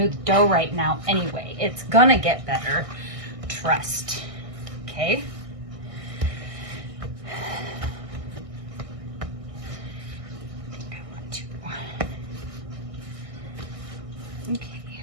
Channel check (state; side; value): late; left; 1.6 ms